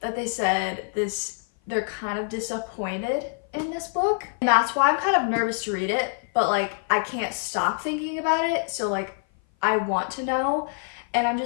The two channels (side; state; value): right; silent; 56 dB below the other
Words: that they said they're kind of disappointed in this book. And that's why I'm kind of nervous to read it, but like I can't stop thinking about it. So like I want to know, and I'm